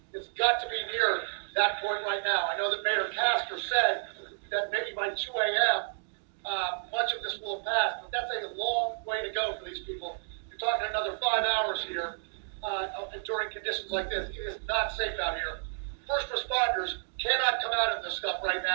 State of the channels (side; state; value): left; silent; digital silence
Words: it's got to be near that point right now. I know that Mayor Castor said that maybe by 2 a.m., much of this will have passed, but that's a long way to go for these people. You're talking another 5 hours here during conditions like this. It is not safe out here. First responders cannot come out of this stuff right